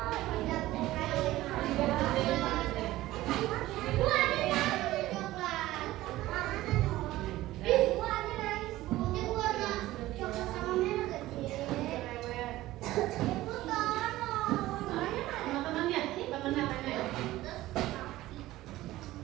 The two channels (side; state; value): left; quieter; 16.4 dB